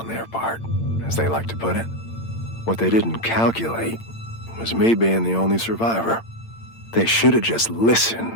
their part, as they like to put it. What they didn't calculate was me being the only survivor. They should have just listened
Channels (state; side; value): late; right; 8.8 ms